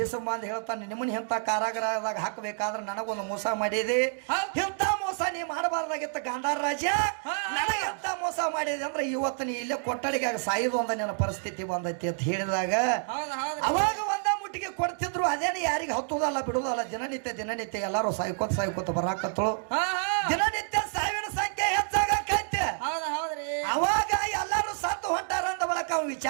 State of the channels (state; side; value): silent; left; digital silence